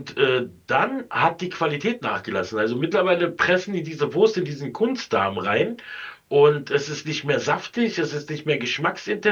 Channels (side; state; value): both; identical; correlation 1.00